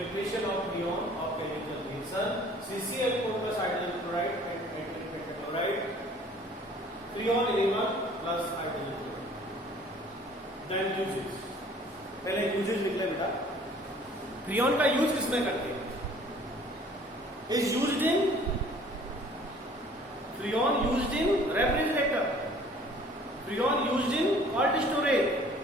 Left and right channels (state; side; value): normal; both; correlation 0.53